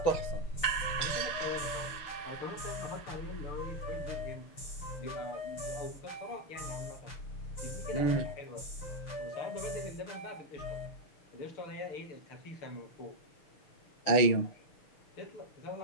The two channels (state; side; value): late; right; 6.5 ms